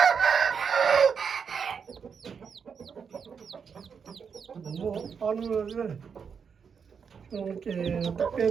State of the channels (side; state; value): left; quieter; 6.4 dB